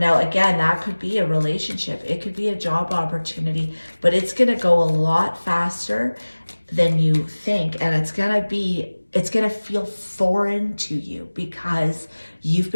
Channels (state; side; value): inverted; both; correlation -1.00